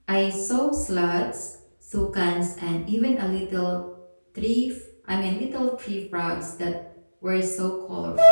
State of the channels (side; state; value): both; inverted; correlation -1.00